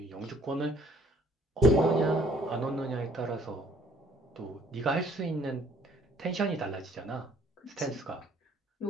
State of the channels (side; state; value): both; normal; correlation 0.60